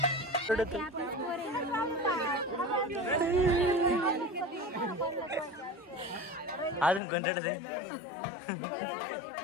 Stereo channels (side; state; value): right; drops out; at 7.0 s